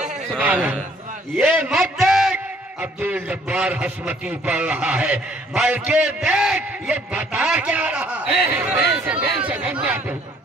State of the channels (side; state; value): both; normal; correlation 0.62